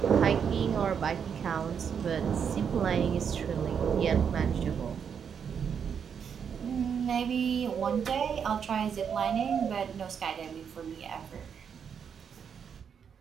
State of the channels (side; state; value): left; quieter; 7.3 dB